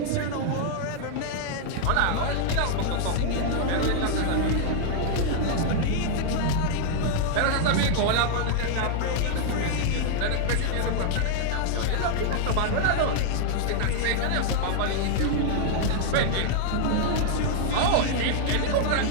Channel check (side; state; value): both; different; correlation -0.01